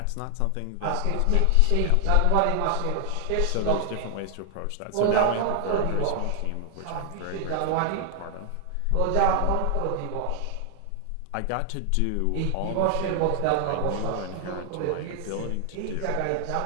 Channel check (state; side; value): different; both; correlation 0.00